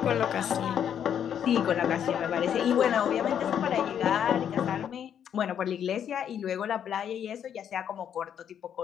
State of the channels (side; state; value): right; quieter; 9.0 dB